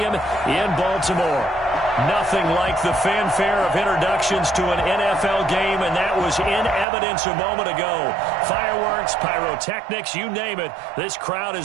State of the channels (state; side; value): drops out; left; at 6.9 s